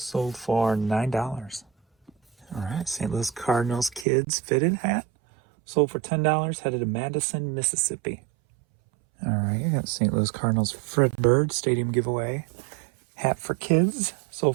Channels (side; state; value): left; drops out; at 4.0 s